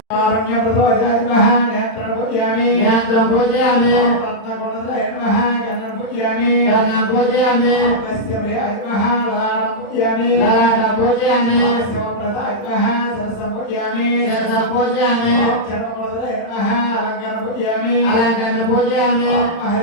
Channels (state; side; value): late; right; 35 ms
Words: కారుణ్యప్రదోజాయ నేత్రం పూజయామి. నేత్రం పూజయామి. రత్నకుండలాయ నమః గణం పూజయామి. గణం పూజయామి. తస్య ప్రియాయ నమః లలాటం పూజయామి. లలాటం పూజయామి. శివప్రదాయ నమః సరసం పూజయామి. సరసం పూజయామి. చర్మకుండలాయ నమః అలంకారం పూజయామి. అలంకారం పూజయామి.